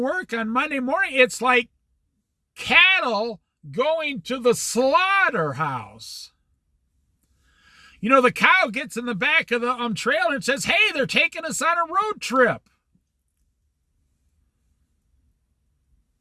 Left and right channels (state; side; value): identical; both; correlation 1.00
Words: on Monday morning. It's like cattle going to the slaughterhouse. You know, the cow gets in the back of the trailer and says, hey, they're taking us on a road trip.